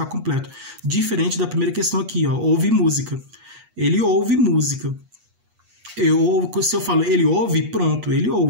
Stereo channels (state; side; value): late; left; 8.3 ms